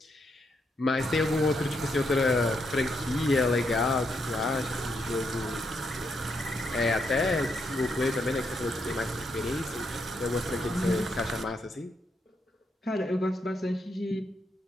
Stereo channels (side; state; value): both; normal; correlation 0.79